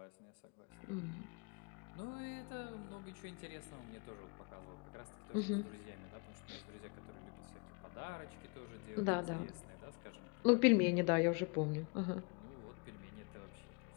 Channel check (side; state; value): right; quieter; 32.9 dB